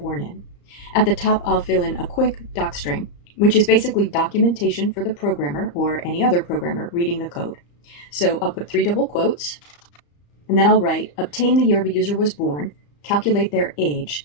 in. At the top, I'll fill in a quick docstring, which is basically documentation for the programmer or any other programmer reading the code. So I'll put 3 double quotes, and then I'll write, obtain the year the user was born, calculate their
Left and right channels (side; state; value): right; late; 34 ms